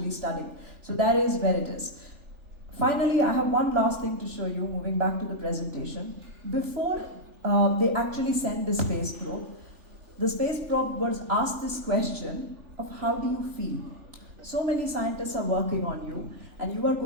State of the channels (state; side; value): late; left; 3.4 ms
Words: studying. So that is where it is. Finally, I have one last thing to show you, moving back to the presentation. Before they actually sent the space probe, the space probe was asked this question of how do you feel? So many scientists are working on you, and you are